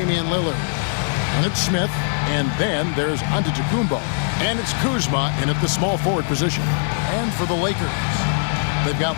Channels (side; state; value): right; silent; digital silence